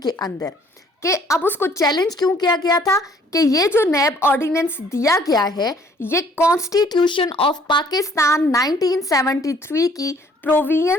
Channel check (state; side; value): normal; both; correlation 0.59